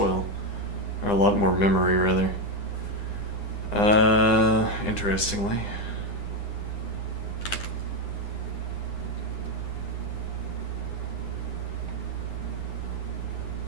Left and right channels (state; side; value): late; right; 9.8 ms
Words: Or a lot more memory, rather. Interestingly.